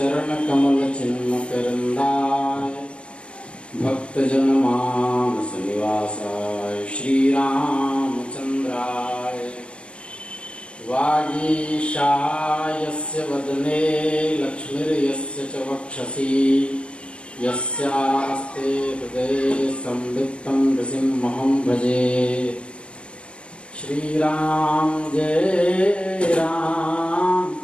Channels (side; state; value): right; late; 0.058 ms